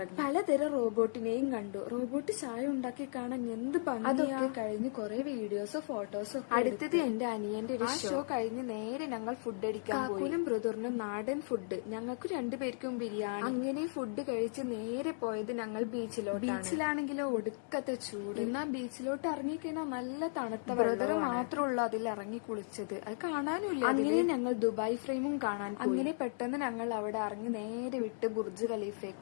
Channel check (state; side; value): silent; right; digital silence